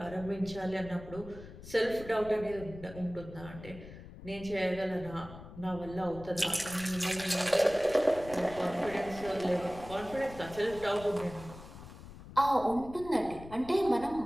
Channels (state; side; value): noise; left; rumble, 15 dB below the sound